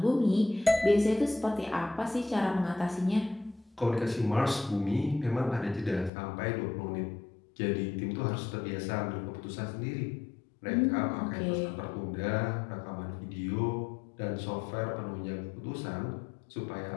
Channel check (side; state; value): right; drops out; at 6.1 s